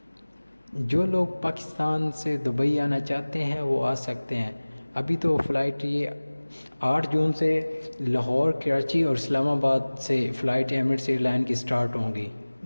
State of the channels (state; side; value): inverted; both; correlation -1.00